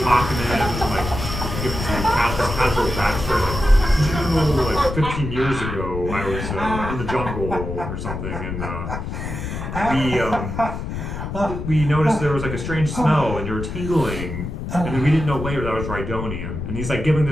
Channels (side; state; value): left; noise; rumble, 6 dB below the sound